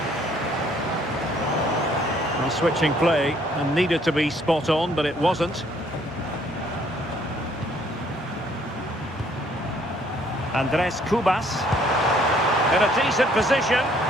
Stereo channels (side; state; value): both; normal; correlation 0.63